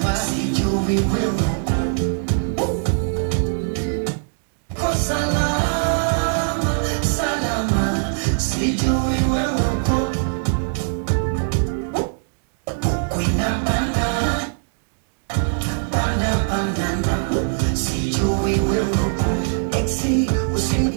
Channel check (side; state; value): left; silent; digital silence